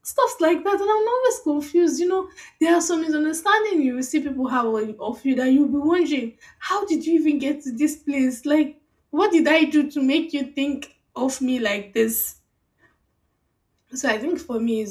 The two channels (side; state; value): both; identical; correlation 1.00